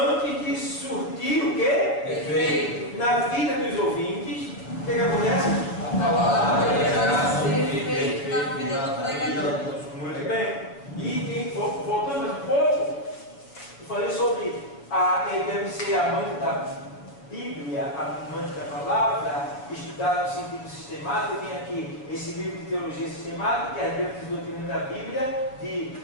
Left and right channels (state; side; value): late; right; 7.3 ms